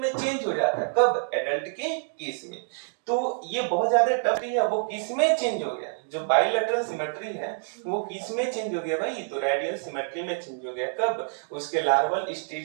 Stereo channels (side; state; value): left; silent; digital silence